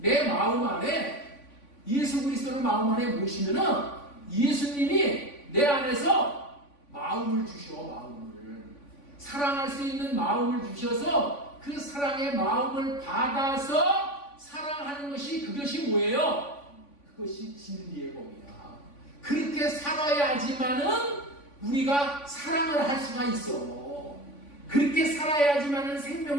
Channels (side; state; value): right; late; 3.5 ms